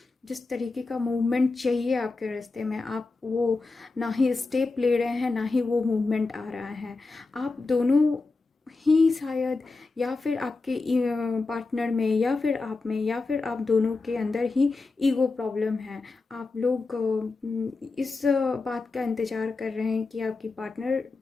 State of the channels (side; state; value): right; quieter; 3.7 dB